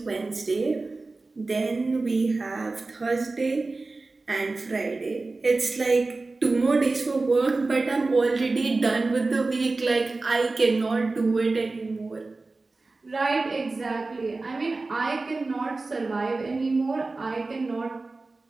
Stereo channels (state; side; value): quieter; left; 3.5 dB